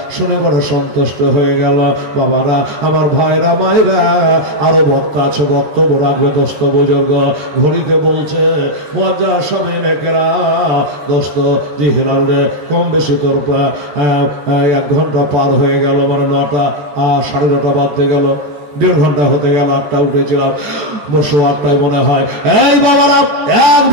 শুনে বড় সন্তুষ্ট হয়ে গেল। বাবারা, আমার ভাইরা মায়েরা, আরো বক্তা আছে, বক্তব্য রাখবে দোস্ত বুজুর্গ। ঘড়িতে বলছে মুয়াজ্জার সামিন একরা দোস্ত জি হিলাল রে, কম বেশি তোর 1 ঘন্টা পার হয়ে গেল, মানে 9টা 9:30 বাজতে গেল, 1.5 ঘন্টা হতে গেল। 8টা উঠেছিলাম, বসো 8টায় মনে হয়। এই বাবারা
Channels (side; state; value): left; late; 14 ms